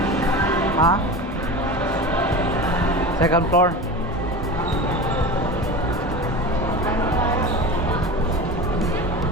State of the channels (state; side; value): normal; both; correlation 0.30